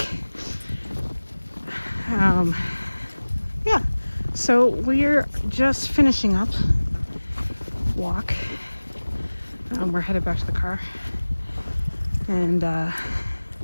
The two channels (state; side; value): inverted; both; correlation -1.00